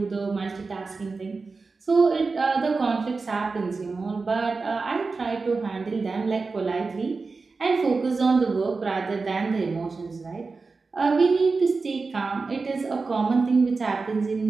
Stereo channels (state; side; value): quieter; left; 4.2 dB